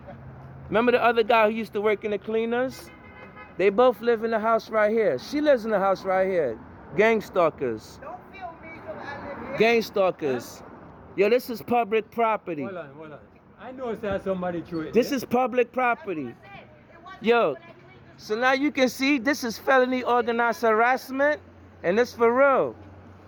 the other guy who used to work in the cleaners? They both live in the house right here. She lives in the house right here. Gang stalkers. Don't feel me because I live here. Gang stalkers. Yo, this is public property. Hold on. I know there's somebody threw it. This is public property. Yo, so now you can see this is felony organized harassment, and it's for real.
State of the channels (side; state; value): both; identical; correlation 1.00